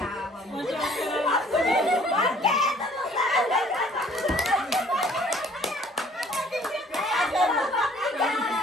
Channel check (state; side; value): normal; both; correlation 0.56